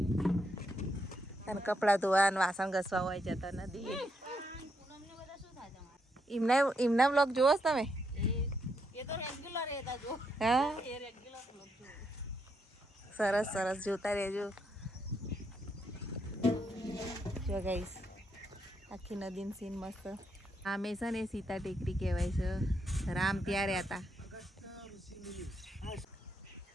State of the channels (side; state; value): both; normal; correlation 0.79